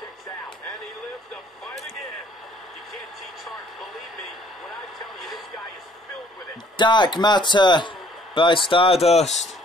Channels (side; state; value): both; normal; correlation 0.60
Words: Dark Matter by Stardust.